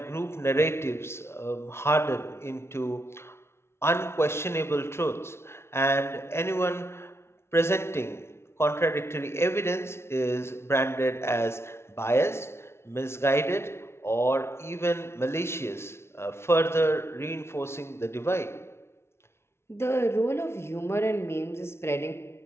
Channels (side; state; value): right; late; 0.12 ms